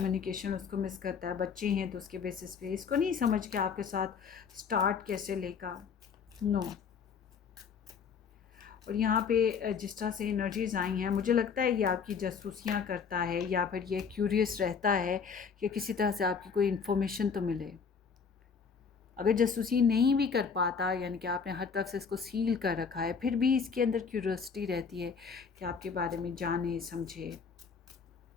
उसको मिस करता है। बच्चे हैं तो उसके बेसिस पे इसको नहीं समझ के आपके साथ स्टार्ट कैसे लेगा, नो। और यहाँ पे जिस तरह से एनर्जीज़ आई हैं, मुझे लगता है ये आपकी जासूसियाँ करता है, या फिर ये क्यूरियस रहता है कि किसी तरह से आपकी कोई इन्फॉर्मेशन तो मिले। अगर जासूसी नहीं भी कर पाता, यानी कि आपने हर तरफ से इसको सील कर रखा है, फिर भी इसके अंदर क्यूरियोसिटी रहती है कि आपके बारे में जाने समझे।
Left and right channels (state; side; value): quieter; right; 6.0 dB